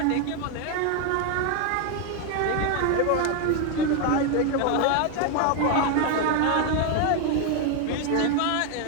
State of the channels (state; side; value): different; both; correlation 0.01